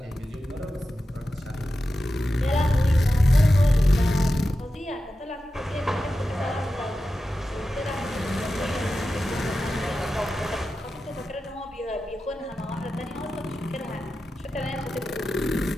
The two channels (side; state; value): both; normal; correlation 0.92